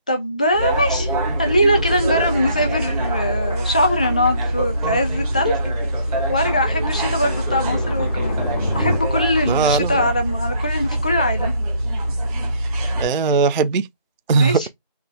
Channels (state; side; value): inverted; both; correlation -0.63